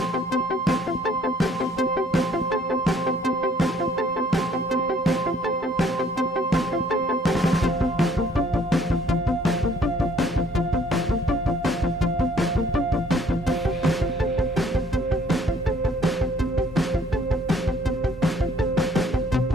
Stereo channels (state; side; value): normal; both; correlation 0.61